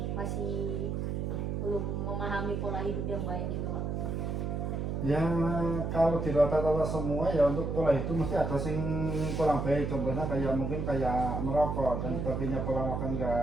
masih belum memahami pola hidup yang baik gitu Pak? Ya kalau di rata-rata semua ya untuk pola itu mesti ada sing kurang baik, contohnya kayak mungkin kayak merokok dan sebagainya, pola makan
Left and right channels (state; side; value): noise; right; hum, 2 dB below the sound